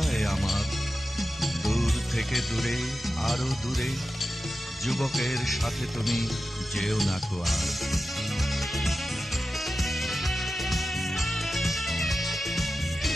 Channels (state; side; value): normal; both; correlation 0.93